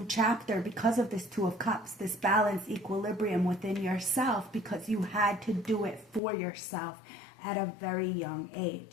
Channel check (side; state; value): right; drops out; at 6.2 s